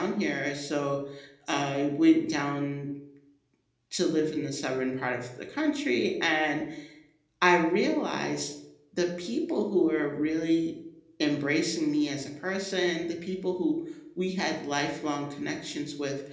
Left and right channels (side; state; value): both; identical; correlation 1.00